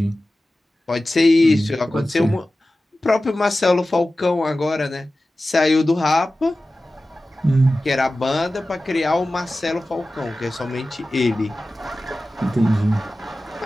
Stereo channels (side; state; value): both; normal; correlation 0.95